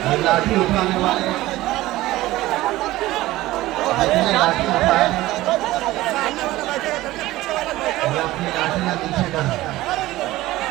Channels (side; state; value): left; quieter; 17.1 dB